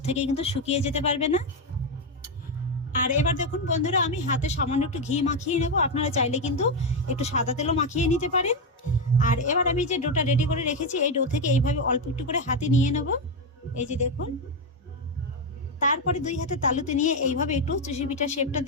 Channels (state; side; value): normal; both; correlation 0.07